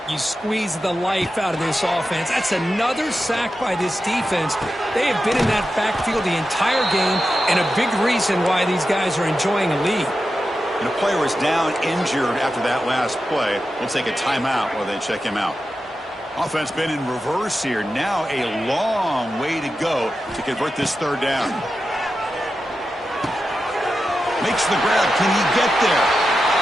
you squeeze the life out of this offense. That's another sack by this defense. They have been in that backfield the entire game, and a big reason why these guys are enjoying a lead. And a player is down injured after that last play. We'll take a timeout while they check him out. Offense been in reverse here. Now a long way to go to convert this third down. Makes the grab. Can he get there?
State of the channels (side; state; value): both; normal; correlation 0.91